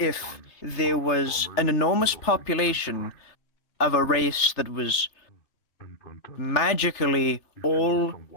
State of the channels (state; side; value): late; right; 3.3 ms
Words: there was an enormous population of a race that was magically all